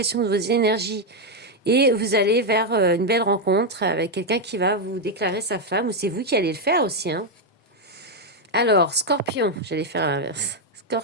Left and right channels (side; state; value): both; normal; correlation 0.02